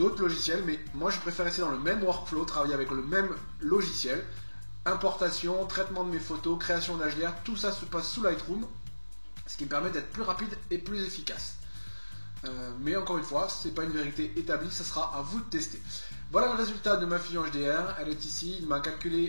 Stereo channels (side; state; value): both; inverted; correlation -1.00